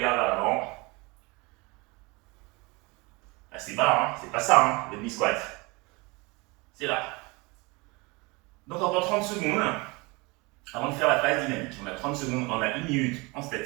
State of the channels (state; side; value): quieter; left; 26.2 dB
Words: vers l'avant. Assez bas, hein. C'est pas ça, hein, le demi-squat. C'est là. Donc, encore 30 secondes avant de faire la phase dynamique. On a 30 secondes, on a 1 minute en